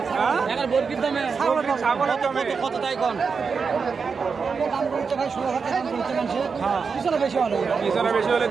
ছাগলের দামে কত তাই কন? পিছনে বেশি হলে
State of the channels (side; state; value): left; quieter; 5.4 dB